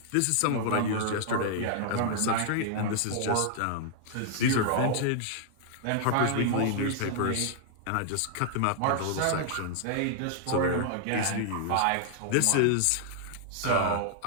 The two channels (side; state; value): both; different; correlation -0.01